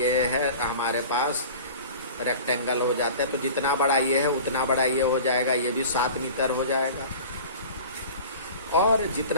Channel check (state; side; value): inverted; both; correlation -0.39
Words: है हमारे पास रेक्टेंगल हो जाता है। तो जितना बड़ा ये है उतना बड़ा ये हो जाएगा, ये भी 7 मीटर हो जाएगा, और